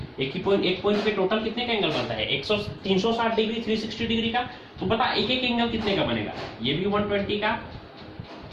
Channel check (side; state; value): both; identical; correlation 1.00